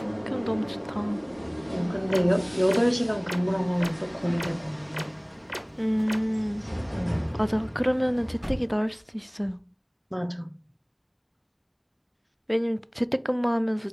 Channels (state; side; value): identical; both; correlation 1.00